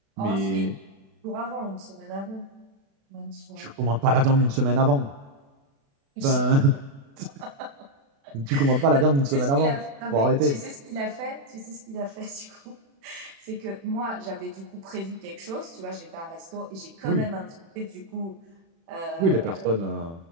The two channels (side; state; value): left; late; 36 ms